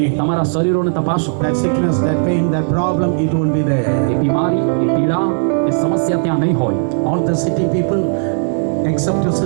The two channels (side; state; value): left; silent; 64 dB below the other